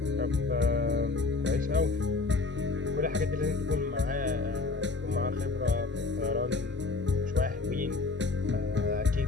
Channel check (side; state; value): right; quieter; 3.7 dB